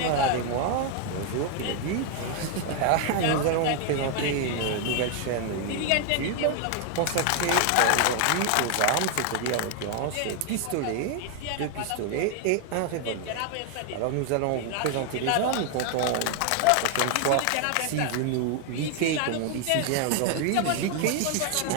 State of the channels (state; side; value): different; both; correlation 0.01